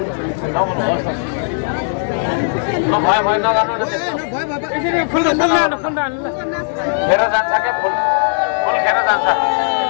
नबोल्नुहोस् न भयो नगर्नु न त्यस्तो खेर जान्छ क्या फुल खेर जान्छ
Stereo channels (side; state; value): right; silent; 68 dB below the other